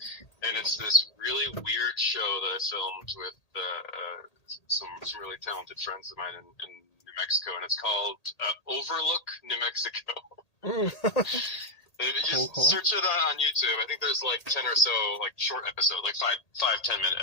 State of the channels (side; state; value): right; late; 1.8 ms